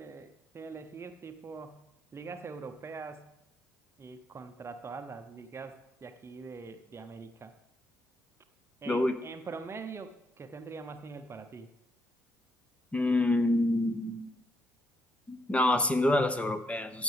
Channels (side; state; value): both; normal; correlation 0.76